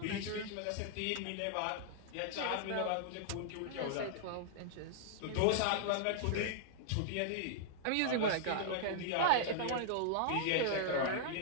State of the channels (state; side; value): different; both; correlation -0.01